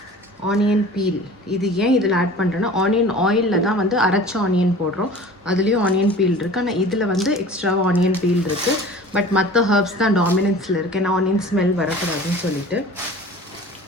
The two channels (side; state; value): both; normal; correlation 0.42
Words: ஆனியன் பீல், இது ஏன் இதில் ஆட் பண்ணுறேன்னா, ஆனியன் ஆயிலில் தான் வந்து அரைச்ச ஆனியன் போடுறோம். அதுலேயும் ஆனியன் பீல் இருக்குது. ஆனால் இதில் வந்து எக்ஸ்ட்ரா ஆனியன் பீல் இருக்குது. பட் மற்ற ஹர்ப்ஸ் தான் டாமினன்ஸில் இருக்குது. ஏன்னா ஆனியன் ஸ்மெல் வரக்கூடாதுன்னு சொல்லிட்டு.